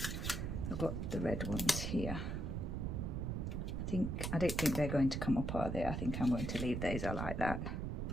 I've got the red ones here. I don't think they're going to come up, are they? I think I'm going to leave those. I like that.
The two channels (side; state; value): right; noise; rumble, 2 dB below the sound